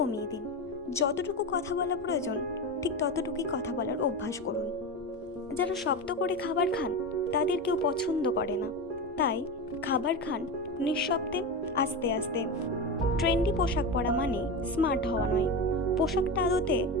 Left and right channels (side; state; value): both; normal; correlation 0.20